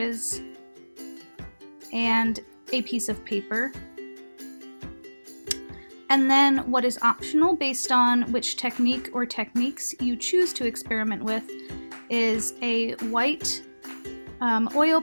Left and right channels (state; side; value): inverted; both; correlation -1.00